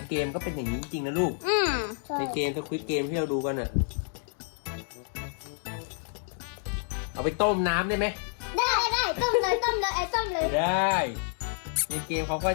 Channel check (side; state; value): right; silent; 59 dB below the other